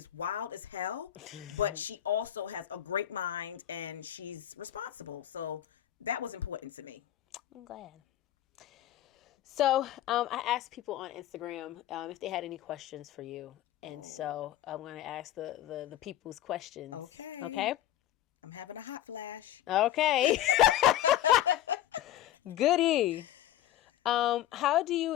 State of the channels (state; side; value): quieter; right; 12.6 dB